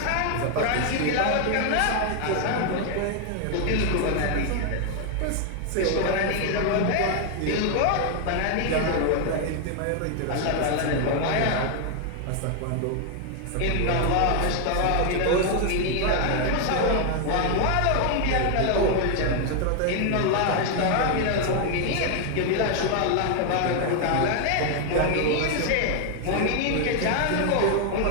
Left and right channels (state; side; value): different; both; correlation 0.00